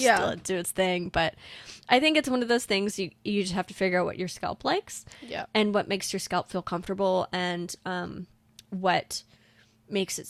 let it do its thing. But I think it's one of those things you just have to figure out what your scalp likes and what makes your scalp feel comfortable and what makes it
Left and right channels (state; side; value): identical; both; correlation 1.00